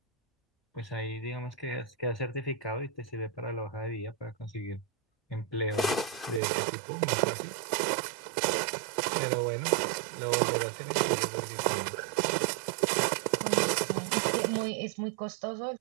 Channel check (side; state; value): left; drops out; at 6.4 s